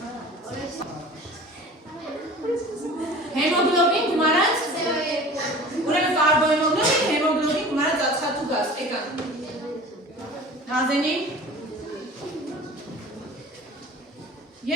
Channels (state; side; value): normal; both; correlation 0.41